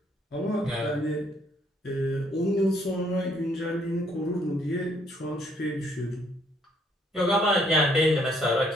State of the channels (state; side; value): normal; both; correlation 0.67